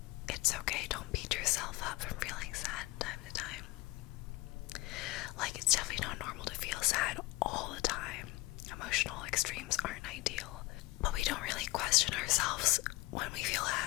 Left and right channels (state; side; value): quieter; right; 20.4 dB